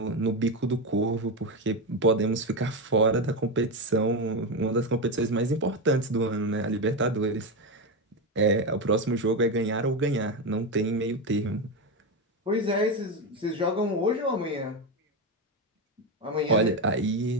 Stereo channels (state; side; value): normal; both; correlation 0.13